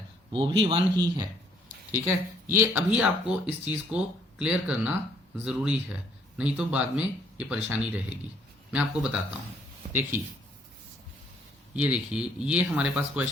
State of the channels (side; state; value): both; normal; correlation 0.64